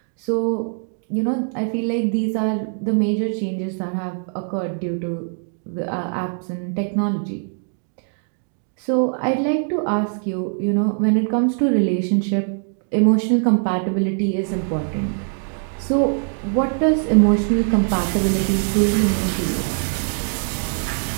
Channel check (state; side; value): silent; left; 55 dB below the other